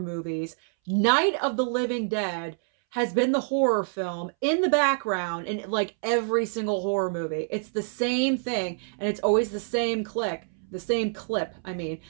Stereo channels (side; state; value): left; silent; 60 dB below the other